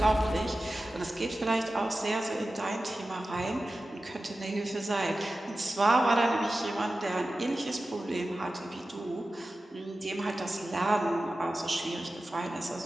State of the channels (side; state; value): both; normal; correlation 0.94